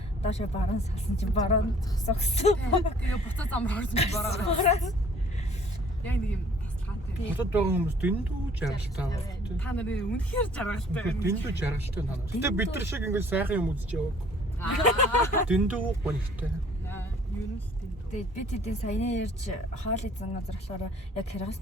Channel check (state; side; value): normal; both; correlation 0.55